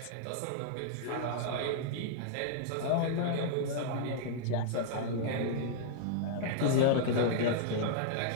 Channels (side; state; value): both; different; correlation -0.01